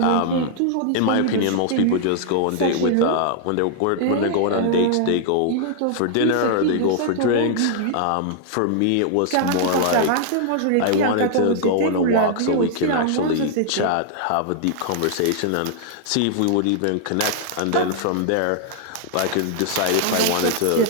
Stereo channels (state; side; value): different; both; correlation 0.00